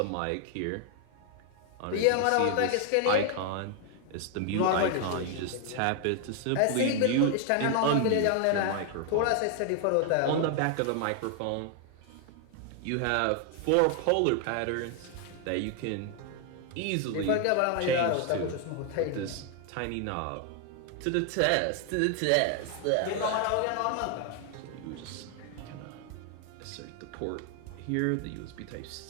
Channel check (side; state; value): both; different; correlation 0.00